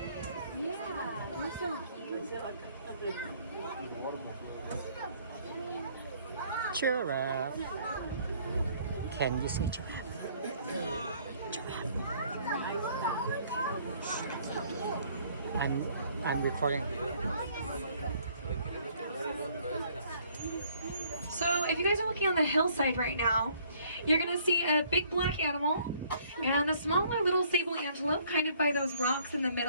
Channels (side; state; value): both; inverted; correlation -0.61